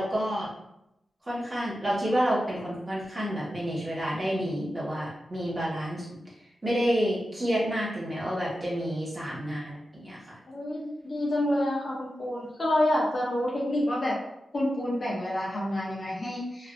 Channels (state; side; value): normal; both; correlation 0.91